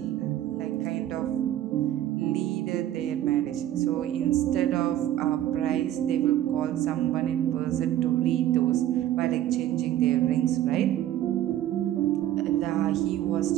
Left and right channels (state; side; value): quieter; left; 12.4 dB